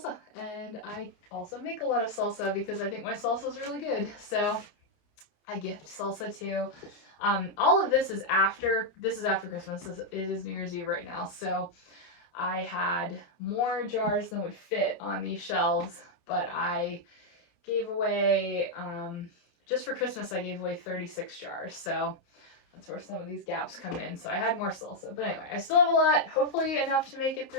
and I also make a lot of salsa because I think my salsa is really good. So I gift salsa too. All of this is after Christmas. It is New Year's Eve right now, so I had more jars than would fit on these shelves, but I gave away, just for Christmas, I gave away 36 jars. So that's where some of these gaps come in. So I had more salsa. But anyway, I still have a lot, hopefully enough to make it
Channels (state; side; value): late; right; 29 ms